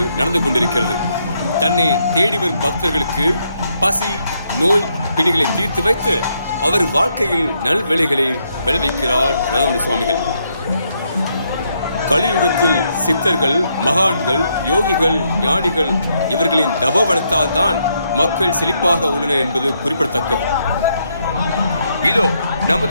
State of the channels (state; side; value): inverted; both; correlation -0.76